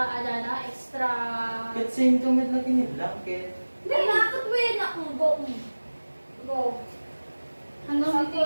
extra. Ket same to med lagi ni blanket. Hindi, nakakot mo yun ako. Go. Hanggang dito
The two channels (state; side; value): inverted; both; correlation -1.00